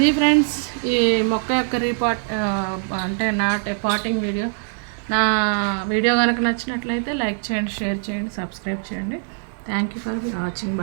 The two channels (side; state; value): left; silent; 55 dB below the other